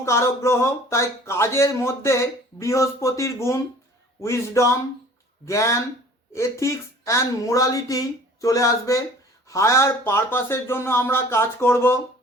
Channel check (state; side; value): normal; both; correlation 0.49